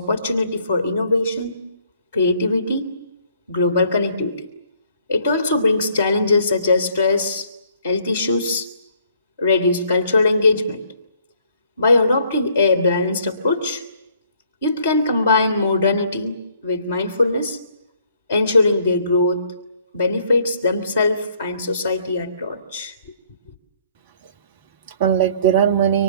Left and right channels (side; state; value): both; inverted; correlation -0.64